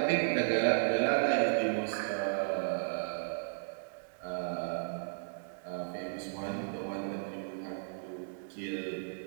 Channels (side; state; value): left; silent; digital silence